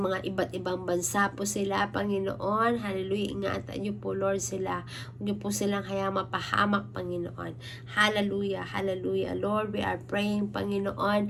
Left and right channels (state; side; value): identical; both; correlation 1.00